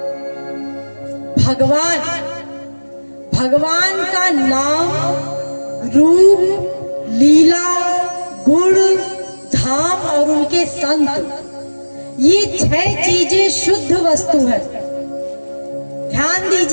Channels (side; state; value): both; inverted; correlation -1.00